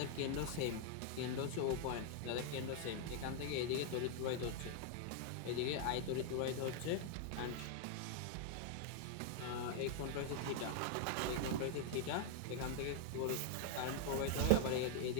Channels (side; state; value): both; different; correlation 0.00